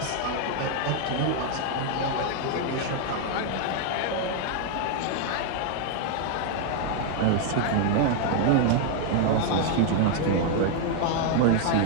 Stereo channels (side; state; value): both; different; correlation 0.00